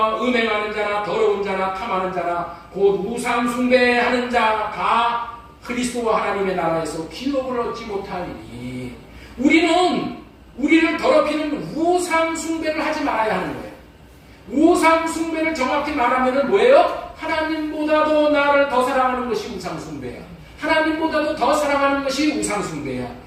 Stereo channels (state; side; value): identical; both; correlation 1.00